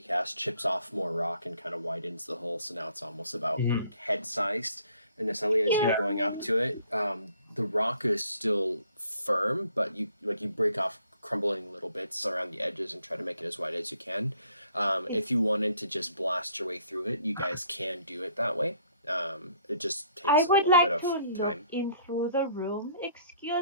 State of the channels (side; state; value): both; inverted; correlation -0.61